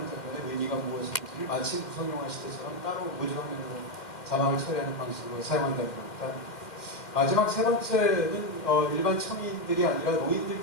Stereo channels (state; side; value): late; right; 2.1 ms